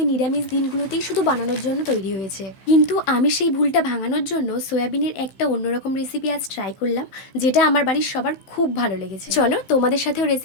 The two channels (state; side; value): late; right; 16 ms